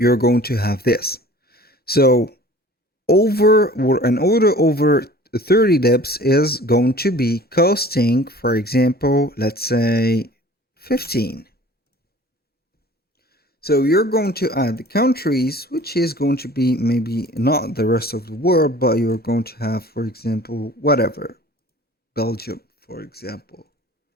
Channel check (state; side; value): normal; both; correlation 0.46